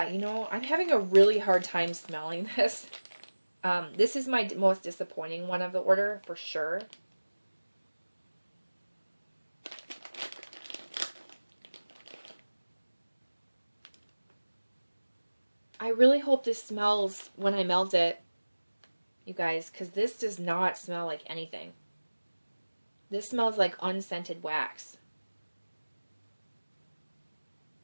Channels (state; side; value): inverted; both; correlation -1.00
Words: you know, I'm having a really hard time smelling this. This is my most disappointing one of the order, for sure. I really hope this smells when I melt it, you guys, because this does not smell like anything. This smells like unscented wax.